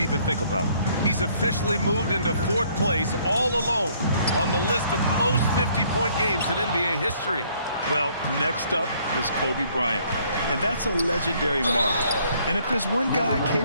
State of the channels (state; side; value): inverted; both; correlation -0.63